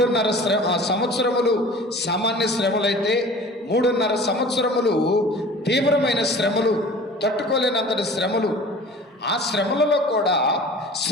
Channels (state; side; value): normal; both; correlation 0.42